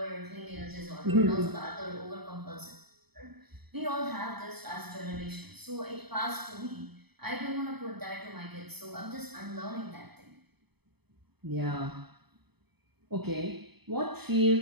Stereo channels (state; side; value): late; left; 0.98 ms